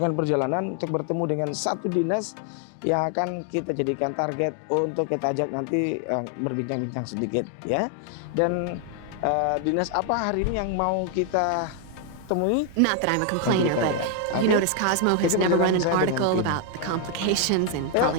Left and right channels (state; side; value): different; both; correlation 0.00